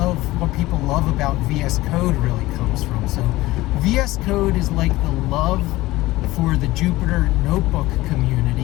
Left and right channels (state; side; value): quieter; right; 18.4 dB